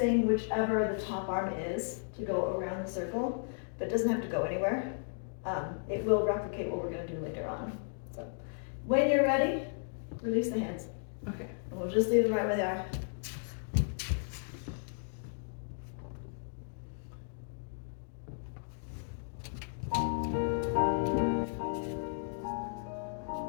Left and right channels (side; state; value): right; silent; digital silence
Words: whichever the top arm is to go around the circle, but it doesn't have to go anywhere. It will replicate what we're going to do later on. So when you're ready, release the hands. Okay. And we'll just leave them right where they are.